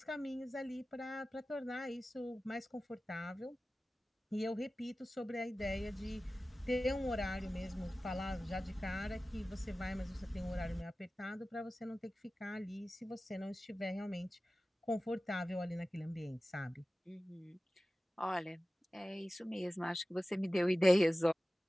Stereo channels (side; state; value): both; normal; correlation 0.96